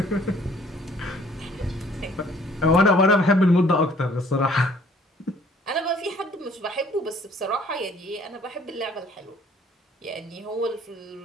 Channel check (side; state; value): both; normal; correlation 0.58